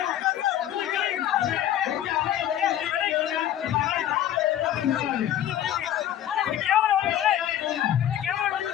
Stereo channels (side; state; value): right; quieter; 11.4 dB